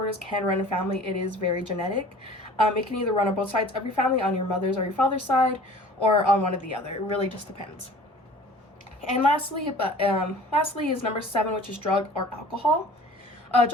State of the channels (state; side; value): normal; both; correlation 0.46